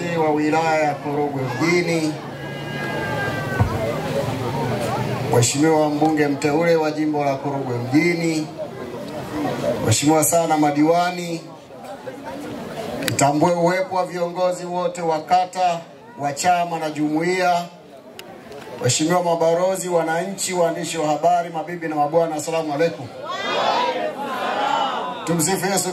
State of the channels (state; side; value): identical; both; correlation 1.00